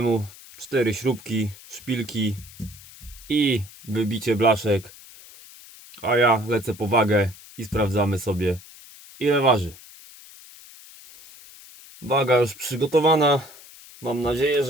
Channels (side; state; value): left; noise; hiss, 20 dB below the sound